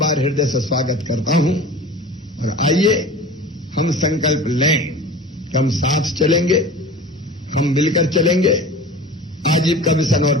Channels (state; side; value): normal; both; correlation 0.38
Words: हृदय से स्वागत करता हूं। और आइए हम संकल्प लें कि हम साथ चलेंगे, हम मिलकर चलेंगे, आजीविका मिशन और